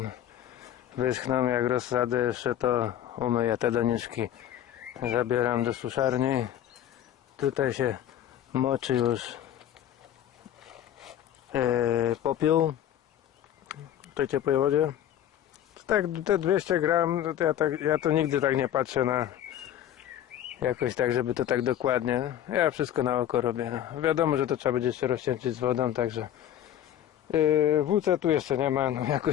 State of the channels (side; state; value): right; quieter; 10.9 dB